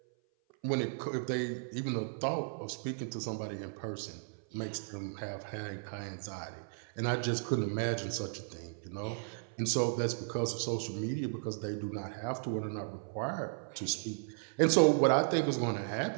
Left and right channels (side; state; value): left; silent; 54 dB below the other